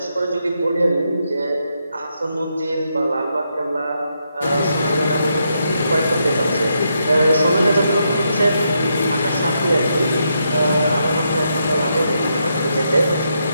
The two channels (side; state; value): both; inverted; correlation -0.80